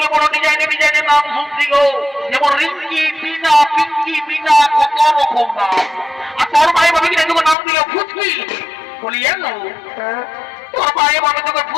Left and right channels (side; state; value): right; drops out; at 7.6 s